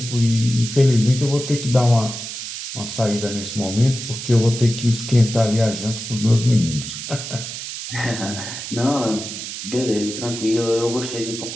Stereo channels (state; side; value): noise; right; hiss, 8 dB below the sound